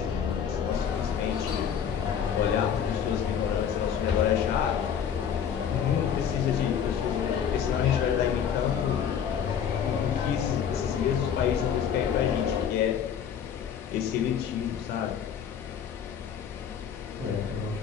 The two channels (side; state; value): right; quieter; 8.1 dB